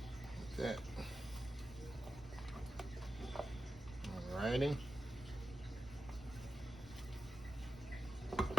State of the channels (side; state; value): both; normal; correlation 0.92